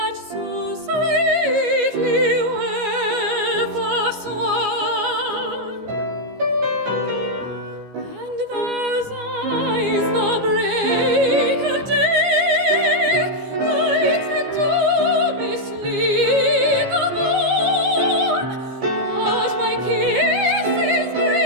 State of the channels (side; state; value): left; late; 14 ms